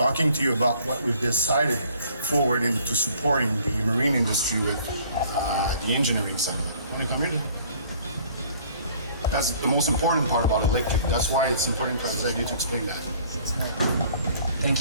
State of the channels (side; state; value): both; inverted; correlation -0.55